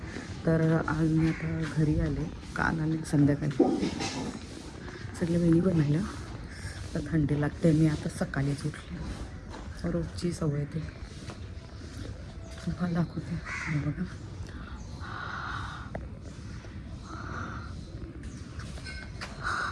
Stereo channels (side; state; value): both; identical; correlation 1.00